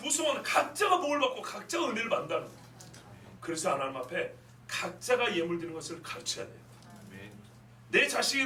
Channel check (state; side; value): identical; both; correlation 1.00